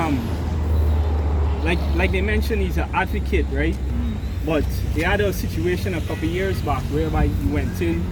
like they mentioned, he's an advocate, right? But they had a situation a couple years back whereby he went in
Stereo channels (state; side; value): identical; both; correlation 1.00